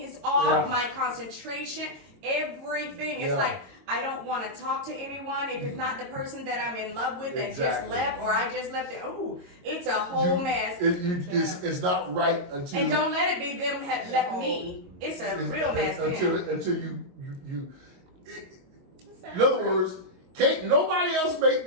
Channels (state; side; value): late; left; 22 ms